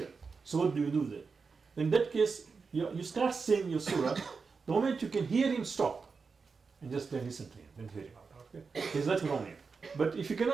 So what do then? In that case, you start saying your surah. The moment you can hear him, stop. And just then listen to him, then hear him out. Okay? There's nothing wrong here. But if you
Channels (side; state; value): left; quieter; 4.9 dB